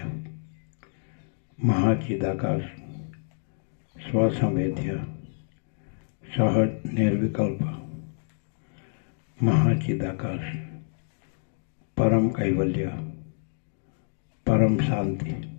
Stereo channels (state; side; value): silent; right; digital silence